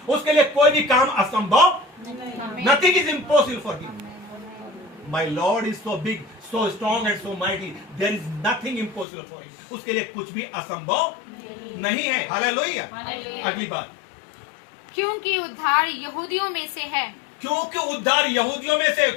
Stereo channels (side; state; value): right; drops out; at 9.1 s